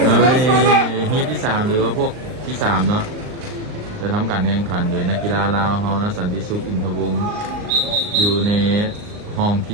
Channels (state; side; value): late; left; 38 ms